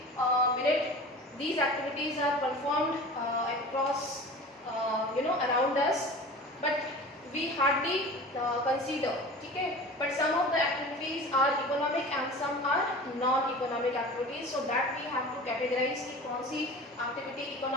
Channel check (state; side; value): normal; both; correlation 0.37